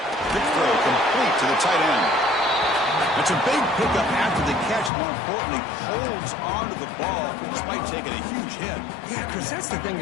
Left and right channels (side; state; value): right; drops out; at 4.9 s